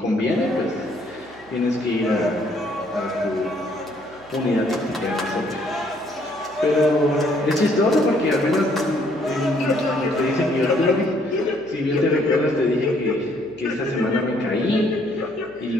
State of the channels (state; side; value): noise; right; hum, 27 dB below the sound